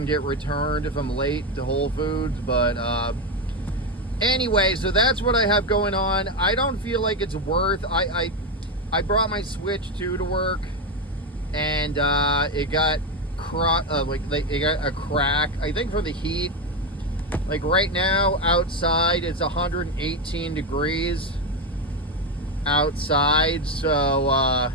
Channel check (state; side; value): normal; both; correlation 0.10